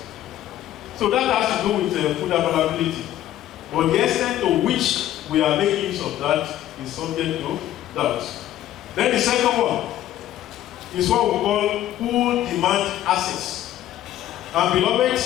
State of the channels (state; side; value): quieter; right; 13.0 dB